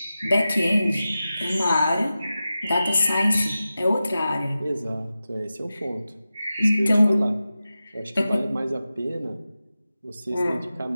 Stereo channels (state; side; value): inverted; both; correlation -0.93